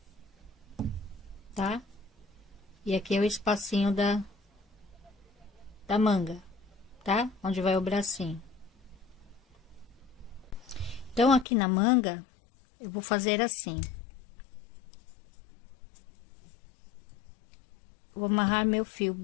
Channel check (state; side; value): drops out; right; at 11.5 s